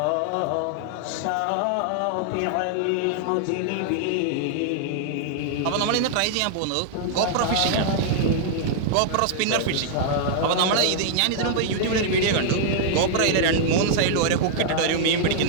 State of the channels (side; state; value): both; different; correlation -0.01